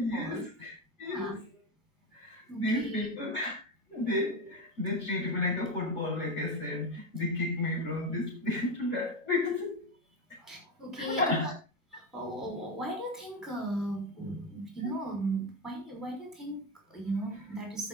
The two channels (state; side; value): normal; both; correlation 0.14